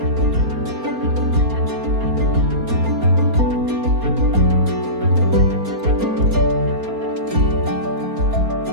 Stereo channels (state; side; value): late; left; 4.3 ms